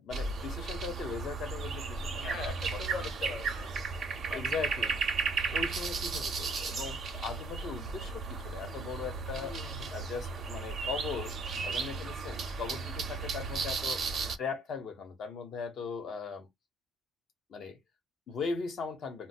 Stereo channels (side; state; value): both; normal; correlation 0.62